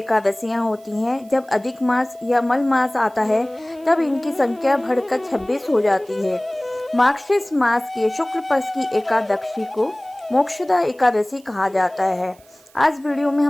होती हैं। जब अधिक मास या मल मास आता है तब इनकी संख्या बढ़कर 26 हो जाती है। मार्गशीर्ष मास के शुक्ल पक्ष की एकादशी को मोक्षदा एकादशी कहा जाता है। आज वीडियो में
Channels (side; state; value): right; noise; hiss, 28 dB below the sound